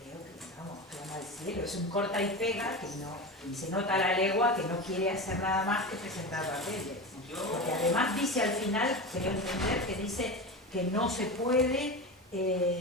que, vamos, clama al cielo, es un corta y pega que no, se nota a la legua que no quiere hacer nada más que presentar papeles. Porque además dice al final, creo entender, que dice que no se puede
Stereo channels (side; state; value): both; normal; correlation 0.24